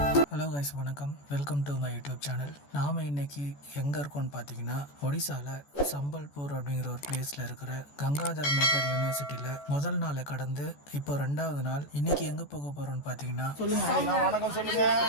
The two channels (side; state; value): right; late; 14 ms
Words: Hello guys, வணக்கம். Welcome to my YouTube channel. நாம் இன்னைக்கு எங்கே இருக்கோம்னு பார்த்தீங்கன்னா, ஒடிசாவில் சம்பல்பூர் அப்படிங்கிற ஒரு பிளேஸில் இருக்கிற கங்காதர் மேகர் யூனிவர்சிட்டியில் முதல் நாளை கடந்து இப்போ 2வது நாள். இன்னைக்கு எங்கே போக போகிறோம்னு பார்த்தீங்கன்னா,